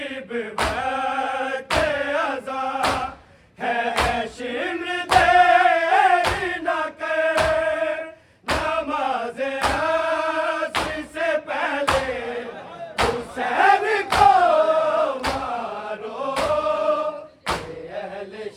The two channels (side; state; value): both; identical; correlation 1.00